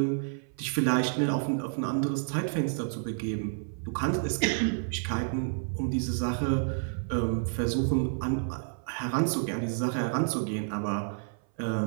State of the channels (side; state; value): left; silent; 58 dB below the other